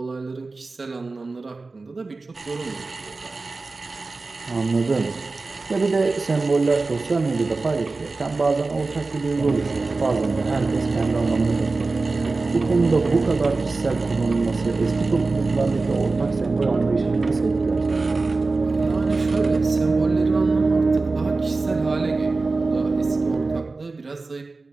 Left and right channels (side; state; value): left; quieter; 3.7 dB